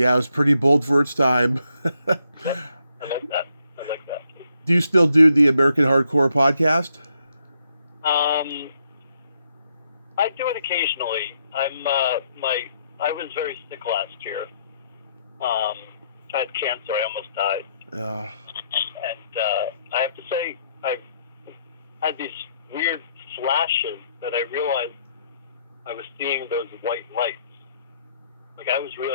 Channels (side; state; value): both; inverted; correlation -0.75